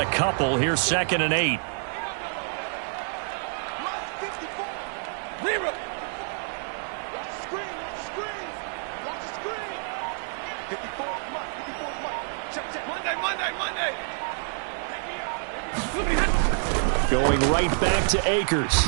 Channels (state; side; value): silent; left; 59 dB below the other